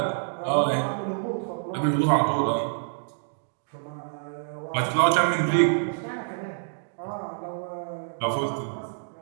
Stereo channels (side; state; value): left; silent; digital silence